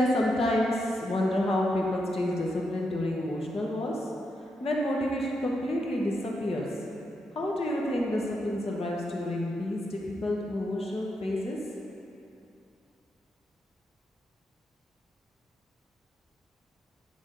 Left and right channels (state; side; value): normal; both; correlation 0.83